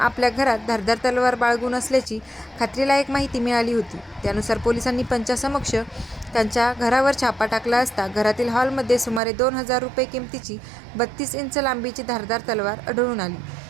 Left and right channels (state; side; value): drops out; left; at 9.2 s